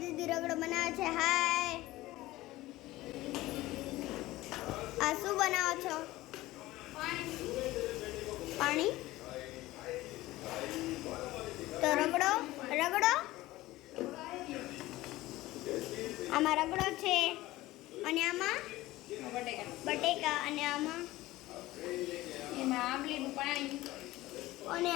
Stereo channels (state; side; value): quieter; right; 17.7 dB